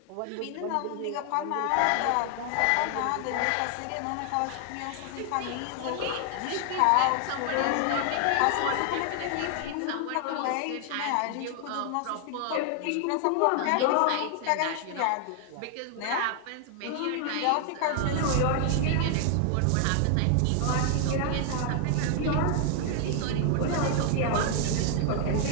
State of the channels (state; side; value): different; both; correlation 0.00